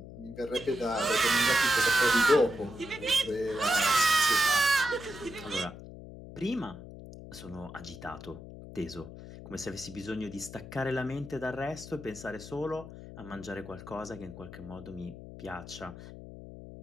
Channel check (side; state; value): left; noise; hum, 14 dB below the sound